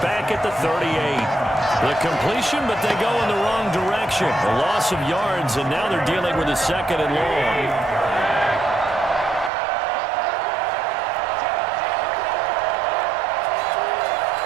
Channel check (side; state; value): left; drops out; at 9.5 s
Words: back at the 38. The completion, but they go in the wrong direction. A loss of yards, and now they're dealing with a 2nd and long.